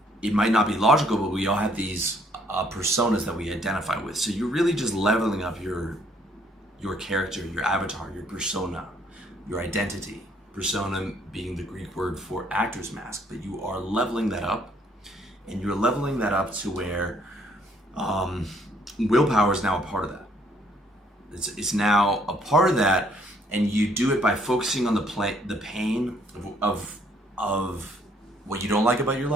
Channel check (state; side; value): normal; both; correlation 0.65